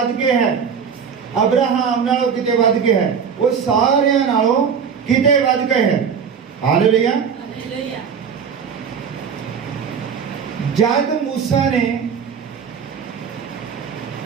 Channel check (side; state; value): left; quieter; 6.7 dB